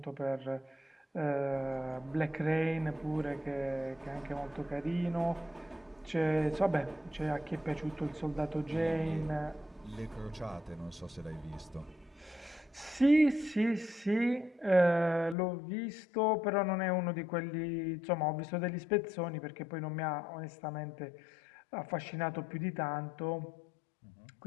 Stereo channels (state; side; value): drops out; right; at 15.4 s